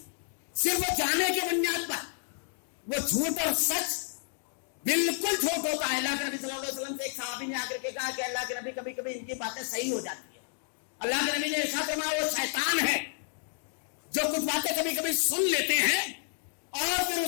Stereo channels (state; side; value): silent; right; 57 dB below the other